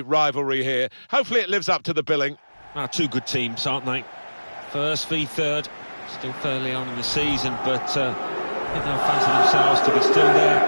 here. Hopefully it lives up to the billing. Two good teams, aren't they? First v third, still fairly on in the season, but I think they'll fancy themselves to be still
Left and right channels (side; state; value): both; inverted; correlation -1.00